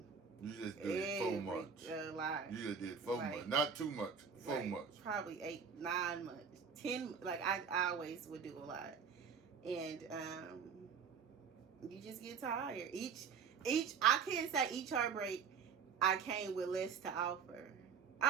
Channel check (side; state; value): left; quieter; 6.3 dB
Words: You just did so much. You just did so much. Not too much. So much. Probably 8, 9 months. 10. Like, I always would do a lot. And you just get tired. I can't say each heartbreak I came with less to offer.